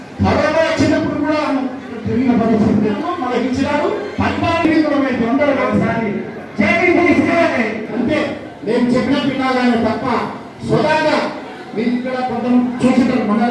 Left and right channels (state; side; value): identical; both; correlation 1.00